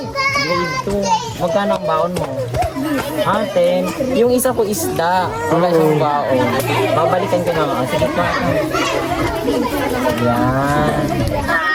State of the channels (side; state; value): both; identical; correlation 1.00